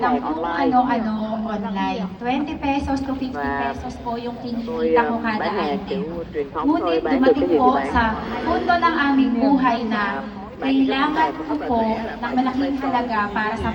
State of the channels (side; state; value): both; identical; correlation 1.00